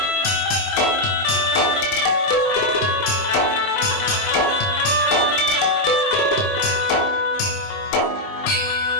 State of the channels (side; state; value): right; late; 20 ms